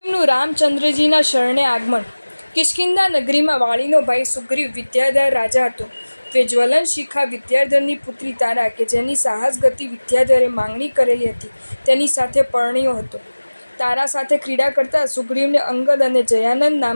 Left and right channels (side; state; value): both; inverted; correlation -1.00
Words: શ્રીગુરુ રામચંદ્રજીના શરણે આગમન। કિષ્કિંધા નગરીમાં વાળીનો ભાઈ સુગ્રીવ વિદ્યાધર રાજા હતો। તે જ્વલન શિખા વિદ્યાધરની પુત્રી તારા કે જેની સાહસ ગતિ વિદ્યાધરે માંગણી કરેલી હતી તેની સાથે પરણ્યો હતો। તારા સાથે ક્રીડા કરતા સુગ્રીવને અંગદ અને જયાનંદ